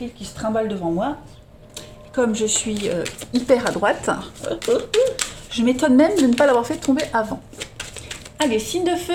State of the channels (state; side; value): identical; both; correlation 1.00